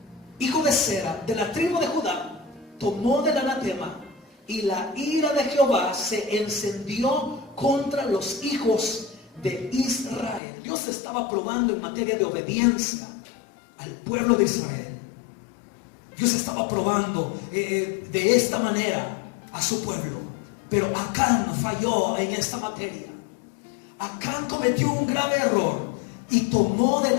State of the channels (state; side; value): drops out; right; at 10.4 s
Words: hijo de Sera, de la tribu de Judá, tomó del anatema, y la ira de Jehová se encendió contra los hijos de Israel. Dios estaba probando en materia de obediencia al pueblo de Israel. Dios estaba probando de esta manera a su pueblo. Pero Acán falló en esta materia. Acán cometió un grave error y tomó del